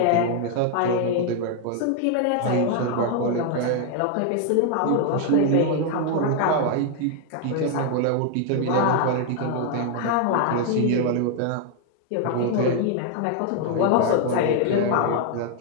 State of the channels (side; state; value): both; different; correlation 0.00